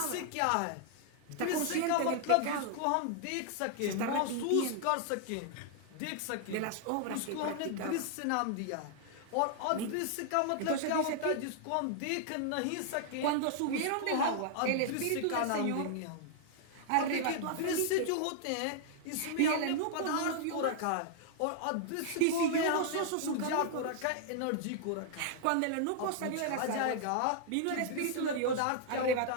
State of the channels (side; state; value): both; different; correlation -0.01